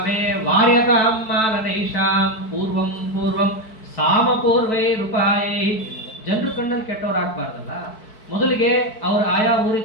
ವಾರ್ಯತಾಂ ಮಾನನೈಷಾಂ ಪೂರ್ವಂ ಪೂರ್ವಂ ಸಾಮಪೂರ್ವೈ ರೂಪಾಯೈ. ಜನರು ಕಣ್ಣಲ್ಲಿ ಕೆಟ್ಟವ್ರಾಗಬಾರ್ದಲ್ಲ. ಮೊದಲಿಗೆ ಅವ್ರು ಆಯಾ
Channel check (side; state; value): right; late; 4.6 ms